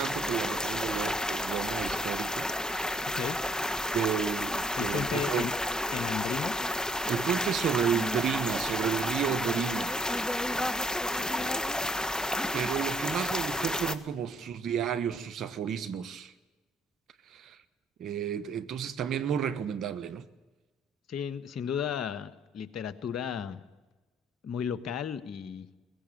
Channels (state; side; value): normal; both; correlation 0.64